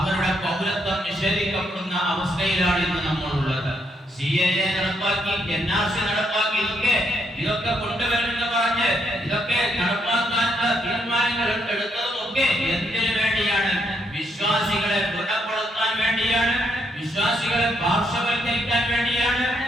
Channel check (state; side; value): normal; both; correlation 0.75